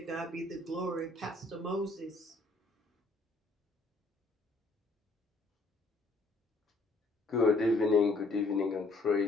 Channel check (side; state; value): right; quieter; 3.0 dB